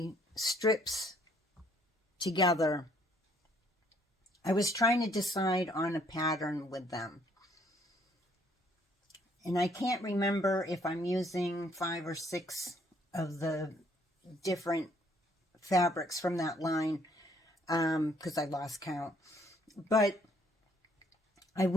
strips together, I was trying to decide on a pattern with them. And I can't remember if I'm using 5 or 6 of the different fabrics from that line, because I lost count. But I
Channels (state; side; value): normal; both; correlation 0.65